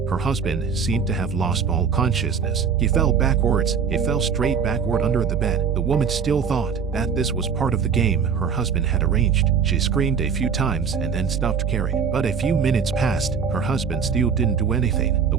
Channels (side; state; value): left; quieter; 6.4 dB